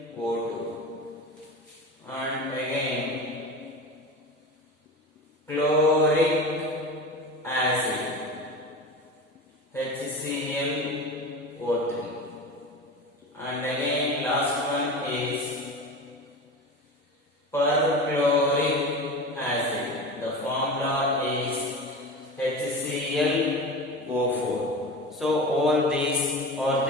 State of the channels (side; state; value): both; normal; correlation 0.29